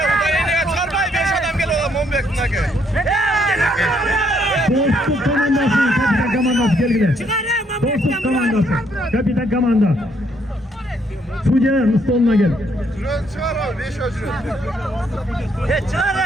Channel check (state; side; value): normal; both; correlation 0.70